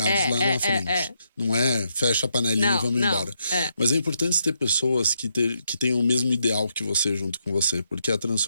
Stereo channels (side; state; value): both; inverted; correlation -0.79